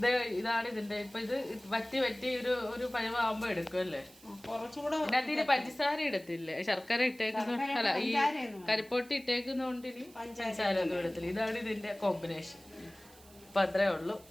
ഇതാണ് ഇതിന്റെ ഇപ്പൊ ഇത് വറ്റി ഒരു പഴമാകുമ്പോ എടുക്കും അല്ലേ? കുറച്ചുകൂടെ ഇതിനകത്ത് പഞ്ചസാര ഇടത്തില്ലേ? ശർക്കര ഇട്ടേക്കുന്ന അല്ല ഈ കരിപ്പൊട്ടി ഇട്ടേക്കുന്നോണ്ട് ഇനി പഞ്ചസാര ഒന്നും ഇടത്തില്ല. ഇതാണ് ഇതിന്റെ കോമ്പിനേഷൻ. അപ്പൊ അത്രേ ഉള്ളൂ.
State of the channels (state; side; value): noise; right; hiss, 24 dB below the sound